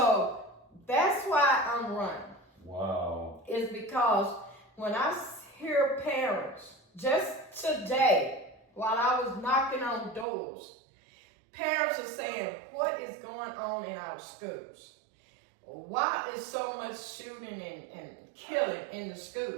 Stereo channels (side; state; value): left; drops out; at 10.2 s